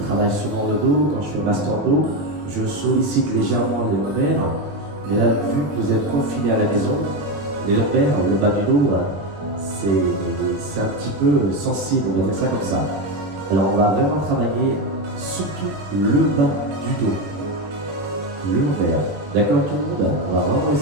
travaille souvent le dos. Quand je fais master dos, je sollicite légèrement les lombaires. Mais là, vu que vous êtes confiné à la maison, les lombaires, le bas du dos, c'est un petit peu sensible, on va dire ça comme ça. Alors on va vraiment travailler surtout le bas du dos, le lombaire. D'accord tout le monde? On va vraiment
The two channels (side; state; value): left; late; 20 ms